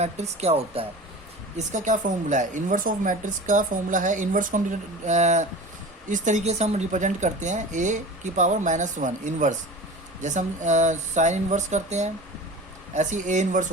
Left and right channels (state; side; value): normal; both; correlation 0.35